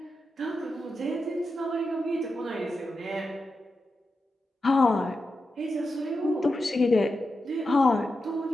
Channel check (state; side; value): normal; both; correlation 0.89